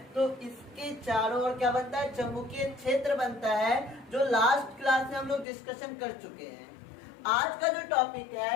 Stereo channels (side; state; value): right; drops out; at 5.5 s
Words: तो इसके चारों ओर क्या बनता है, चुंबकीय क्षेत्र बनता है, जो लास्ट क्लास में हम लोग डिस्कशन कर चुके हैं। आज का जो टॉपिक